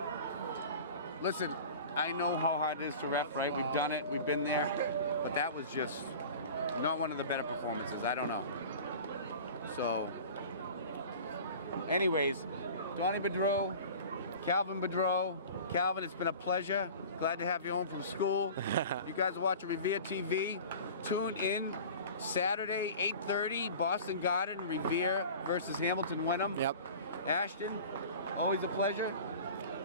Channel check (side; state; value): both; inverted; correlation -0.39